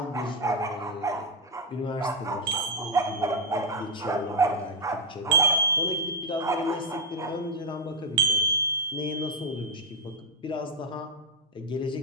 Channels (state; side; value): normal; both; correlation 0.01